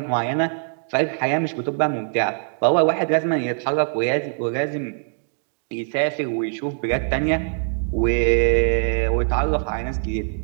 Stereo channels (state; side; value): silent; left; digital silence